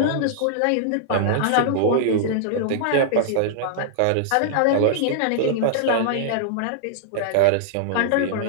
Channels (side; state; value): both; different; correlation -0.01